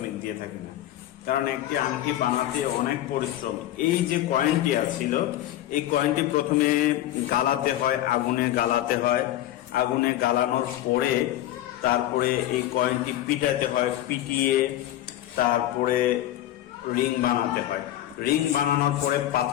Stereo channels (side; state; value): right; quieter; 13.6 dB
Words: দিয়ে থাকি না। কারণ একটি আংটি বানাতে অনেক পরিশ্রম। এই যে কয়েনটি ছিল, এই কয়েনটি প্রথমে গালাতে হয়, আগুনে গালাতে হয়। আগুনে গালানোর পরে তারপরে এই কয়েনটি পিটাতে হয়, পিটিয়ে তারপরে রিং বানাতে হয়। রিং বানানোর পরে